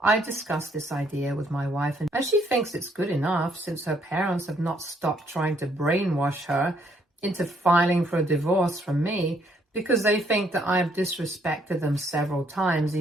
I discussed this idea with my wife, and she thinks it's good enough since her parents have not stopped trying to brainwash her into filing for a divorce from me because they think that I have disrespected them several times,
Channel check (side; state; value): both; normal; correlation 0.69